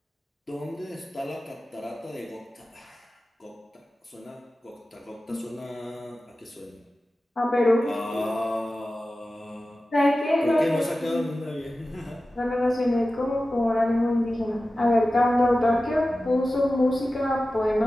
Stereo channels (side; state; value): both; normal; correlation 0.95